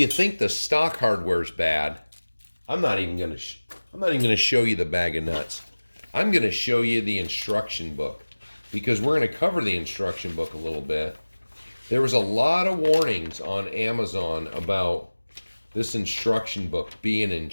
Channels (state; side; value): inverted; both; correlation -1.00